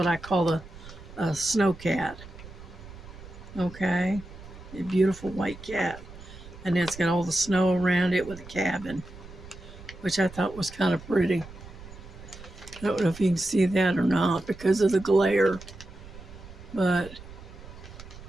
I call a snow cat. Okay, a beautiful white cat, and it's got all the snow around it with a cabin, which I thought was kind of pretty. I don't know if you can see that or not because of the glare, but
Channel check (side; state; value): right; noise; rumble, 16 dB below the sound